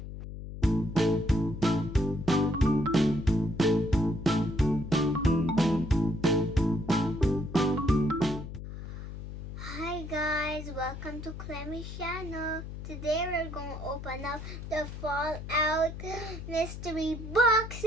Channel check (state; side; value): noise; left; hum, 10 dB below the sound